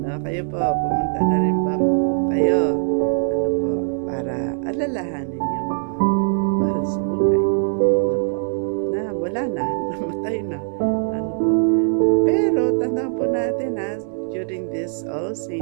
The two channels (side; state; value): left; silent; 60 dB below the other